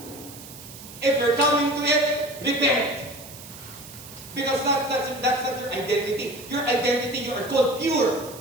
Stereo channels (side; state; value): right; noise; hiss, 16 dB below the sound